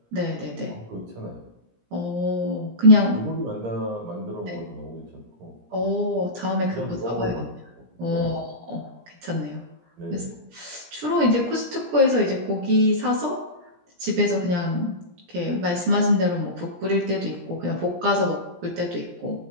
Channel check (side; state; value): left; late; 17 ms